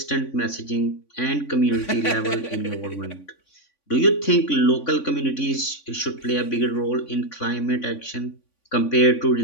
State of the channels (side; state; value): right; late; 3.5 ms